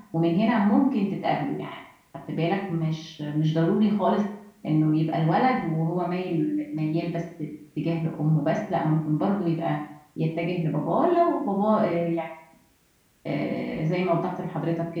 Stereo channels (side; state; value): both; identical; correlation 1.00